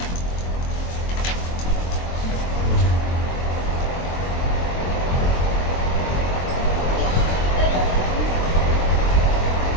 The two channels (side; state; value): right; late; 23 ms